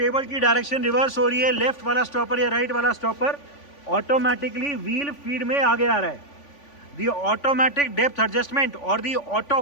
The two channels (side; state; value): right; late; 3.5 ms